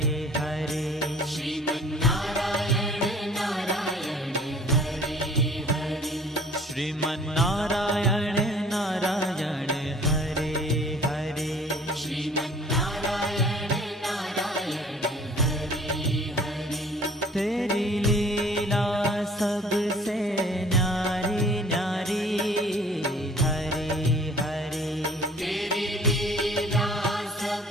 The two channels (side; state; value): both; normal; correlation 0.52